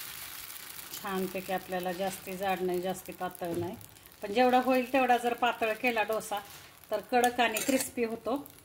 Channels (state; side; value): identical; both; correlation 1.00